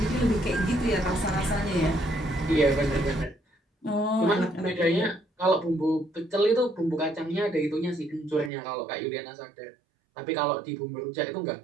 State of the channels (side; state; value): left; drops out; at 8.5 s